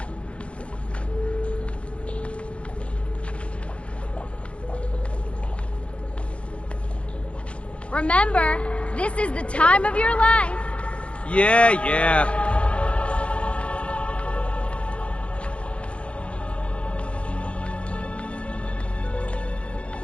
Remember, this is the time of your life. Yeah.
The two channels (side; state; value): right; late; 0.061 ms